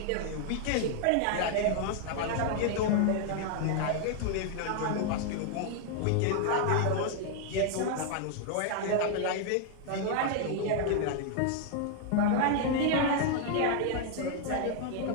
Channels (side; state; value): both; different; correlation 0.00